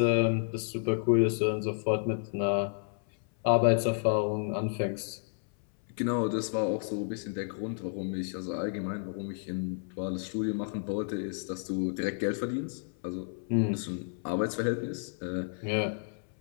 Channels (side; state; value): right; silent; 57 dB below the other